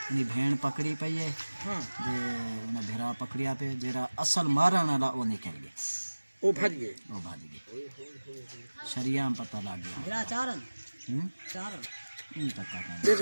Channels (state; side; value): inverted; both; correlation -1.00